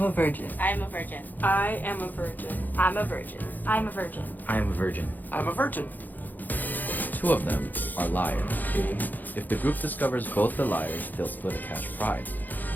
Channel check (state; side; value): late; right; 0.085 ms